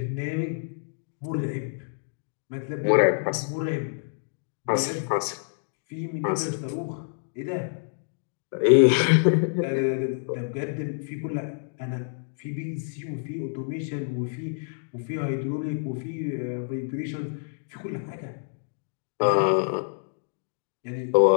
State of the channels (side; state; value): right; silent; digital silence